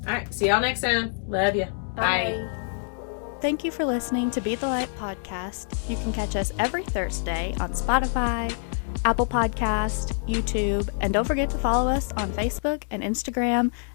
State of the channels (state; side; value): silent; right; digital silence